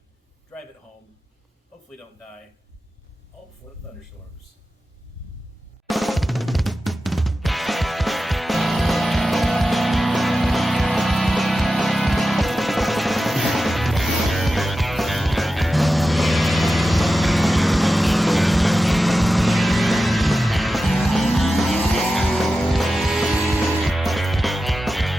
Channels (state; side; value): normal; both; correlation 0.92